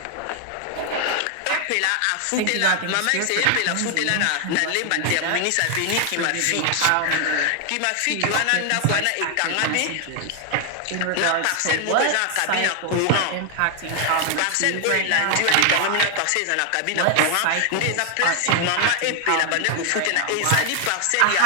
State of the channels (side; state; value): both; different; correlation 0.00